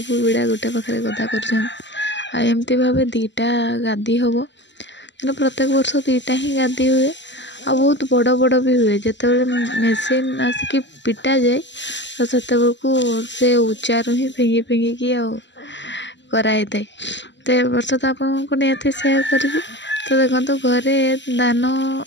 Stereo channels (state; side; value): late; right; 0.53 ms